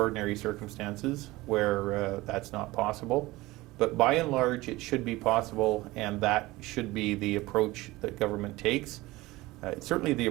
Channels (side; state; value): left; quieter; 19.7 dB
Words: circumstances where that's not possible, but by and large it should be possible, and that should be the approach that government takes. It's certainly the